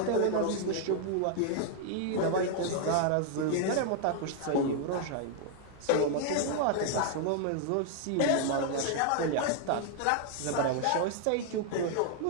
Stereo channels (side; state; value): both; different; correlation 0.00